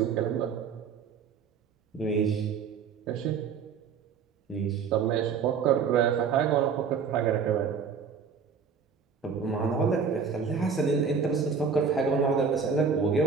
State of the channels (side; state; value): left; quieter; 6.1 dB